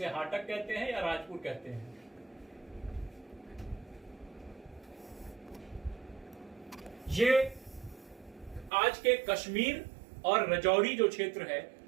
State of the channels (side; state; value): left; drops out; at 8.7 s